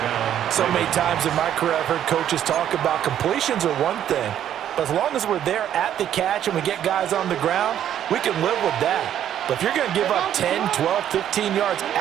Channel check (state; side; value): quieter; left; 10.5 dB